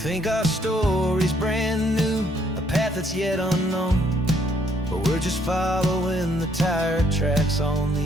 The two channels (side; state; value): both; normal; correlation 0.68